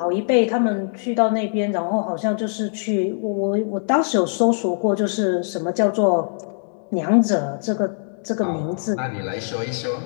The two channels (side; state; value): right; silent; digital silence